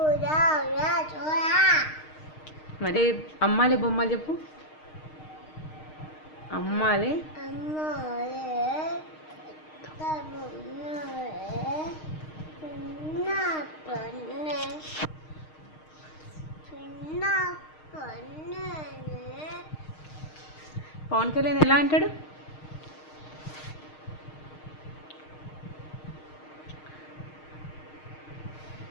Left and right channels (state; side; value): late; right; 6.5 ms